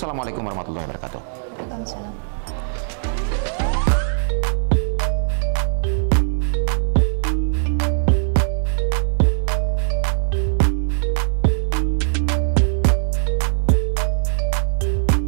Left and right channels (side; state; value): left; silent; digital silence